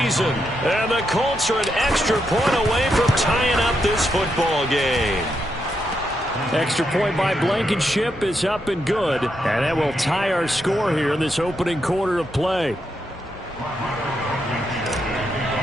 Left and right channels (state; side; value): normal; both; correlation 0.82